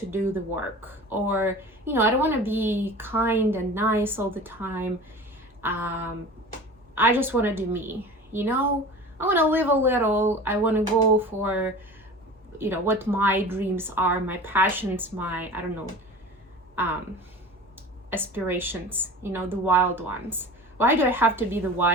do the work. Or, you know, I don't want to be kind and nice all the time. I just want to do me. You know, I want to live a little. I want to go for, you know, what my dreams are, my passions, my, I don't know, aspirations, you know, the wild ones. Why do I have to be the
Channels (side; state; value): both; normal; correlation 0.37